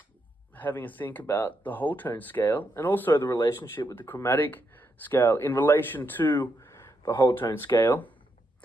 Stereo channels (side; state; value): both; normal; correlation 0.81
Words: having a think about the whole tone scale and also the relationship with the chromatic scale in relation to the whole tone scale.